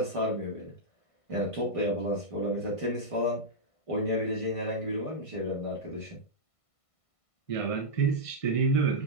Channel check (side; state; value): right; late; 1.5 ms